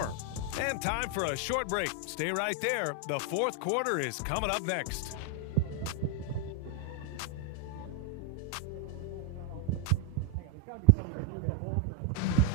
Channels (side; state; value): both; different; correlation 0.01